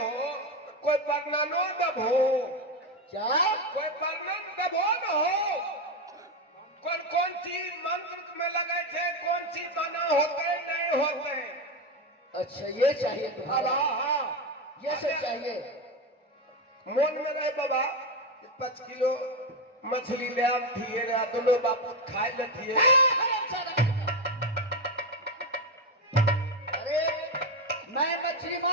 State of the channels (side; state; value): both; normal; correlation 0.12